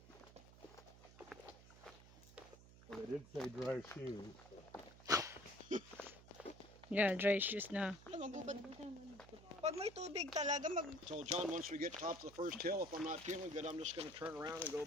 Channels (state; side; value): noise; right; hum, 19 dB below the sound